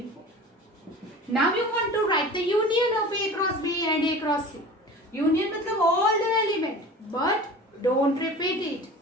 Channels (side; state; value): both; normal; correlation 0.38